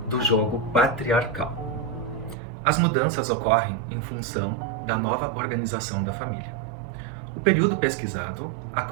do jogo patriarcal. As mudanças ocorrem em função da nova organização da família. O período pesquisado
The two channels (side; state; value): left; drops out; at 2.4 s